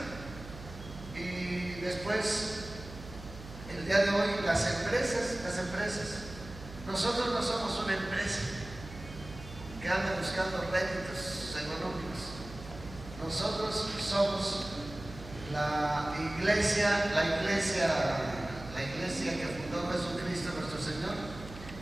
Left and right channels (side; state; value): right; noise; hum, 14 dB below the sound